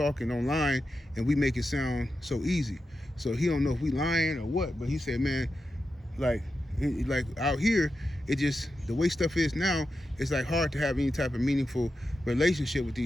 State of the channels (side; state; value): both; normal; correlation 0.89